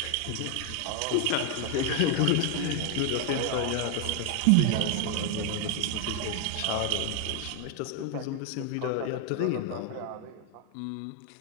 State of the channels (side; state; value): both; different; correlation 0.00